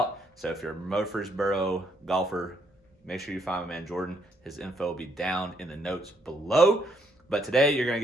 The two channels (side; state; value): both; normal; correlation 0.72